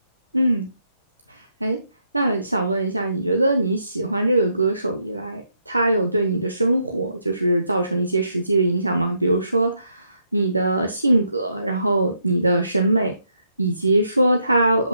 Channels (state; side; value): inverted; both; correlation -0.77